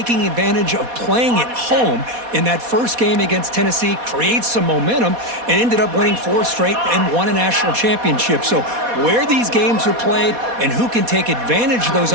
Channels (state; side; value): late; left; 4.2 ms